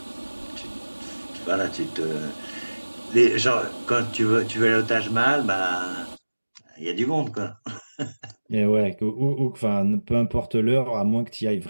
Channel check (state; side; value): inverted; both; correlation -1.00